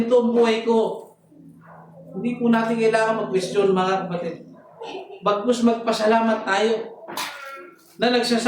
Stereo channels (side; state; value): both; identical; correlation 1.00